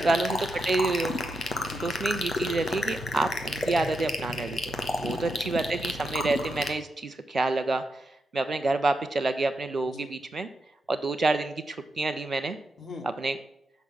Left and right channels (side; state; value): both; normal; correlation 0.85